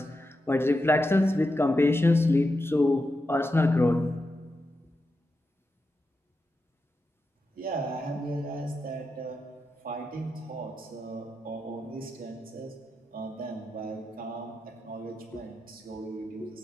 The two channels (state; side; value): normal; both; correlation 0.88